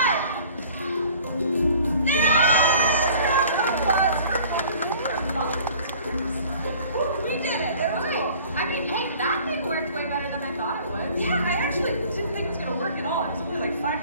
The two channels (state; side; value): inverted; both; correlation -0.50